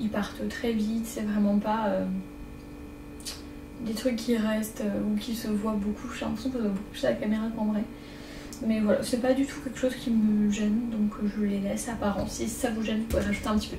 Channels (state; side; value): identical; both; correlation 1.00